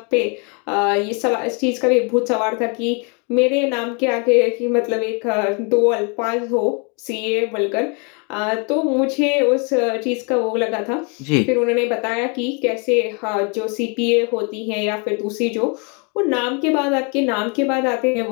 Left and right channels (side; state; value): right; quieter; 34.6 dB